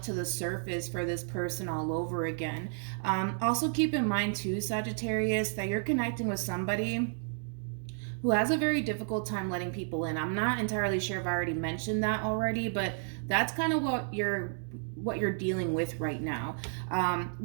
to the surface for this person all over again. Also keep in mind too, Sagittarius, that you're connecting with somebody who has a very difficult time letting people in. I'm not entirely sure if I already mentioned that already, but that's kind of what you're dealing with right now.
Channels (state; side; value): silent; left; 57 dB below the other